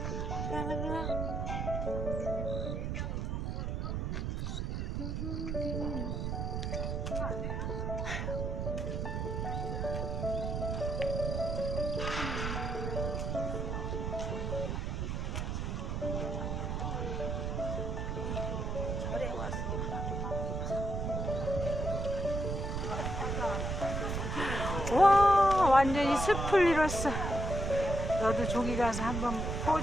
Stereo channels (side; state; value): right; noise; rumble, 1 dB below the sound